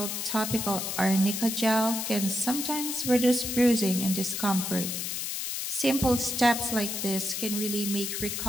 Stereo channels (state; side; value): noise; left; hiss, 3 dB below the sound